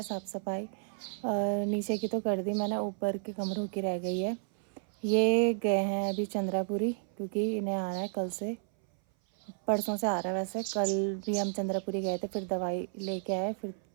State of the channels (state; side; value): silent; left; 57 dB below the other